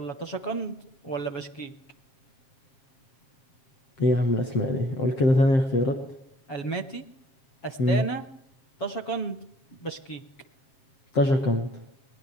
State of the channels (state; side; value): late; right; 7.1 ms